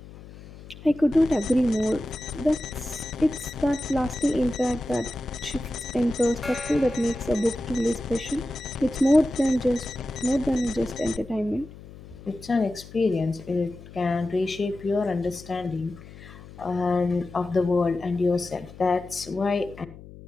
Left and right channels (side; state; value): left; noise; hum, 17 dB below the sound